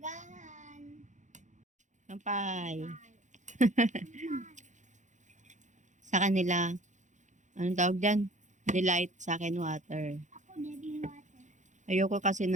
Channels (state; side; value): late; left; 0.35 ms